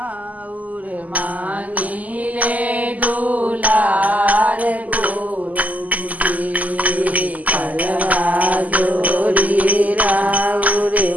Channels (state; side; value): late; left; 0.076 ms